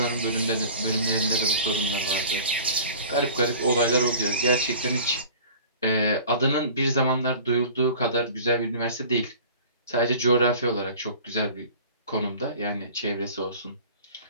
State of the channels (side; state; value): both; inverted; correlation -0.43